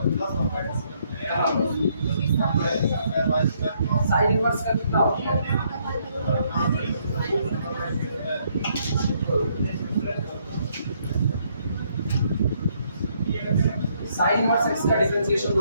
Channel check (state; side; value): inverted; both; correlation -0.71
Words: साइन इनवर्स का कितना होता है? साइन इनवर्स x का डिफरेंशिएशन